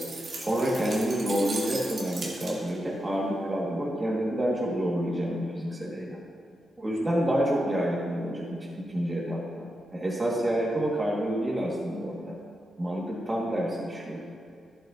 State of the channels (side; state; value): both; normal; correlation 0.87